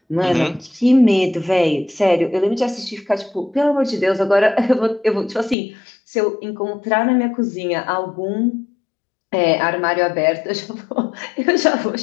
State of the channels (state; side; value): drops out; right; at 5.6 s